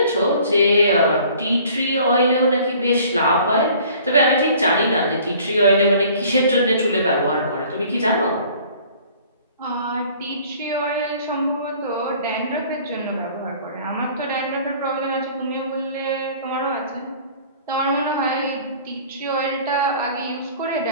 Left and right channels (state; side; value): inverted; both; correlation -0.51